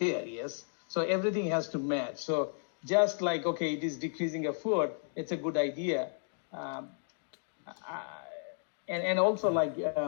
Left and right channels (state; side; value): silent; right; digital silence